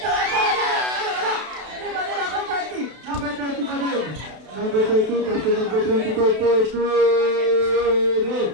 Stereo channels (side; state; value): left; late; 32 ms